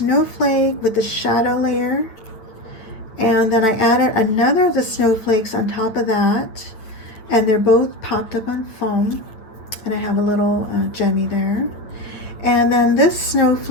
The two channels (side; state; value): right; late; 9.0 ms